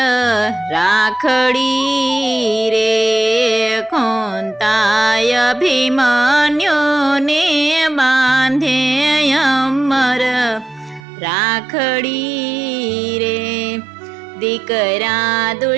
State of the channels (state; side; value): drops out; left; at 11.1 s